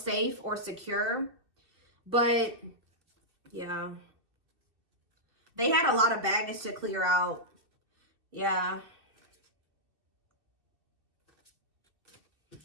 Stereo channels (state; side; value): late; left; 2.6 ms